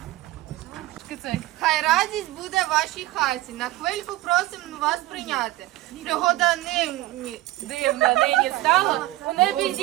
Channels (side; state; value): left; quieter; 17.4 dB